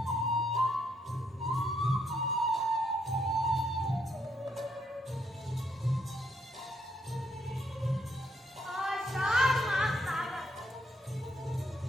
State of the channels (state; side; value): normal; both; correlation 0.73